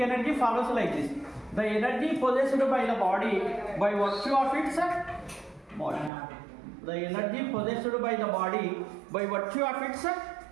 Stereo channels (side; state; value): left; drops out; at 6.1 s